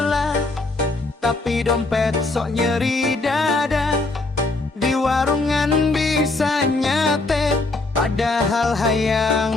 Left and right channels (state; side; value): quieter; right; 3.2 dB